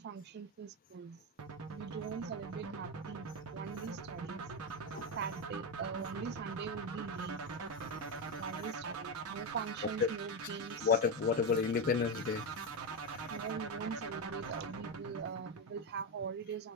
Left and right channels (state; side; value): normal; both; correlation 0.10